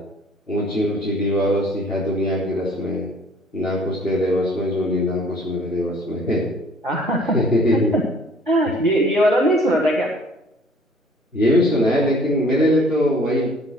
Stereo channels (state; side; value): normal; both; correlation 0.55